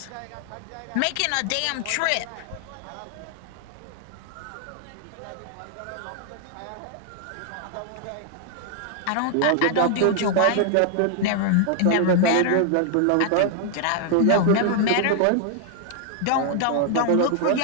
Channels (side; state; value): both; different; correlation 0.00